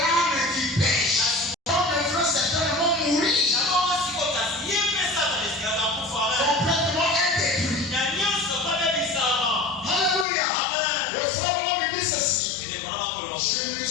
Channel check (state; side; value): drops out; right; at 10.2 s